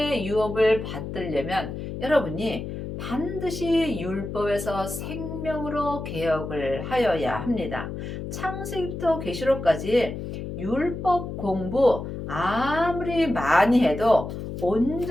유업을 받으려면 여러분이 반드시 율법에서 생명으로 개혁을 하여야 합니다. 창세기부터 계시록까지 율법 공부 아무리 많이 해도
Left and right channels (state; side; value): noise; left; hum, 7 dB below the sound